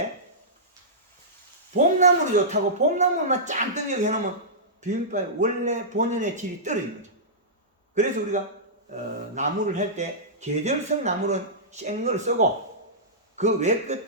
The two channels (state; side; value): normal; both; correlation -0.17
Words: 봄나물이 좋다고 봄나물만 짠 뜨게 해놓으면 비빔밥의 원래 본연의 질이 떨어지는 거죠. 그래서 우리가 나물을 할 때 계절성 나물은 생걸 쓰고 그 외